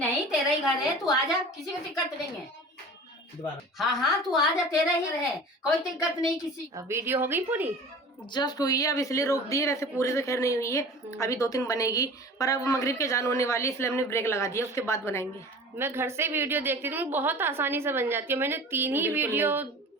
तेरा ही घर है, तू आ जा, किसी को दिक्कत नहीं है। दोबारा हाँ हाँ, तू आ जा, तेरा ही रहे, कोई दिक्कत नहीं किसी। अब वीडियो हो गई पूरी? जस्ट हुई है, अब इसलिए रोक दी है, वैसे पूरी तो खैर नहीं हुई है, अभी 2-3 बनेगी, पर अब मगरिब के जान होने वाली है, इसलिए हमने ब्रेक लगा दिया, उसके बाद बनाएंगे। मैं घर से वीडियो देखती थी, बहुत आसानी से बन जाती है। मैंने 3 ही वीडियो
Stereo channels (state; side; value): normal; both; correlation 0.39